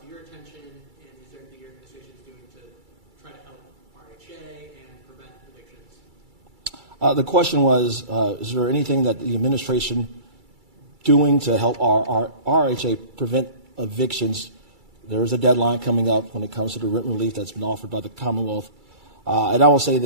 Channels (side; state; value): left; late; 2.3 ms